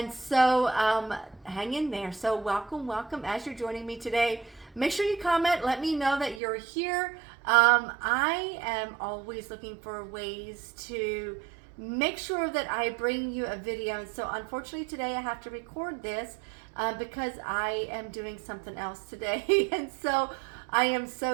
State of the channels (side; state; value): left; drops out; at 6.4 s